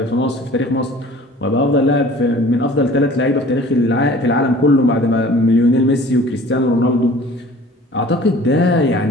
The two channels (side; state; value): both; normal; correlation 0.47